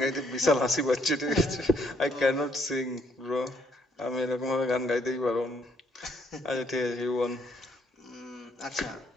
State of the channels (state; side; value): normal; both; correlation 0.69